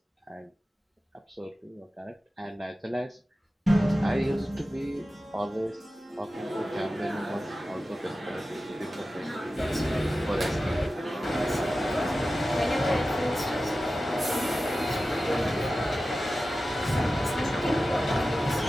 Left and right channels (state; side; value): normal; both; correlation 0.94